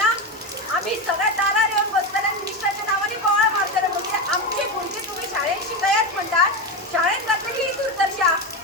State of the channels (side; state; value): both; normal; correlation 0.16